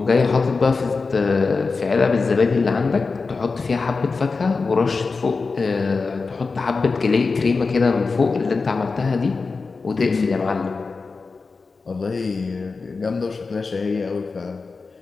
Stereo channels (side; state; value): right; quieter; 4.3 dB